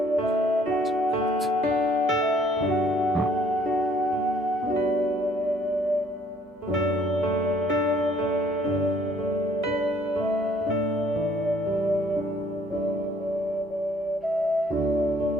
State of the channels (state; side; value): normal; both; correlation 0.60